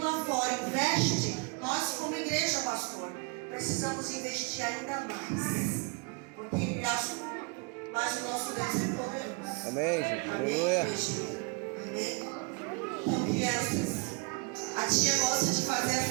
lá fora investe, nós como igreja, pastor, precisamos investir ainda mais. Porque ele é assunto, mas o nosso Deus é poderoso. Amém, Jesus. Aleluia. Amém. Então, crianças, a tia gosta de fazer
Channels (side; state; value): left; quieter; 31.8 dB